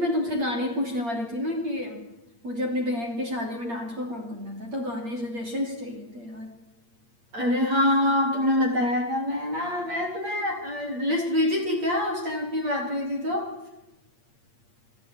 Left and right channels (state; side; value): late; left; 8.6 ms